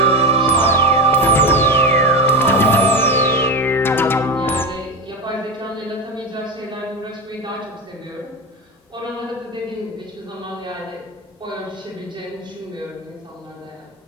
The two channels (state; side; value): normal; both; correlation 0.19